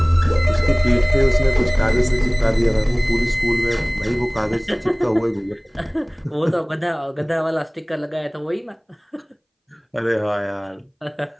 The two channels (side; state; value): both; identical; correlation 1.00